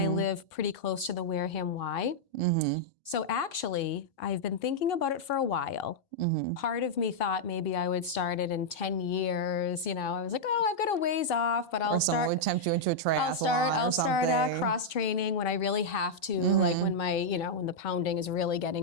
live pretty close to the Wareham Y. So actually, I've been thinking about it for a while. Part of me thought maybe I would start it in 10 years. You know, I was like, oh, I've got a ways off, but I'll start. Someone would tempt you into a triathlon. I'll start cross training when I really have to, like when when the pounding is really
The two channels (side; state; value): both; normal; correlation -0.05